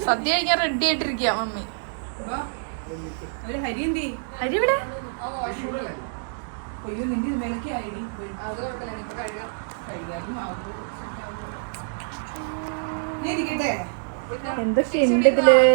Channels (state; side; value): silent; left; 61 dB below the other